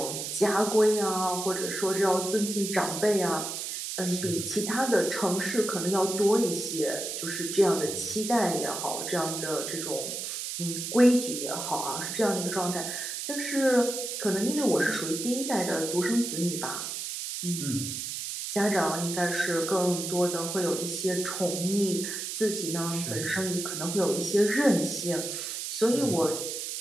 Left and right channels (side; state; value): right; noise; hiss, 5 dB below the sound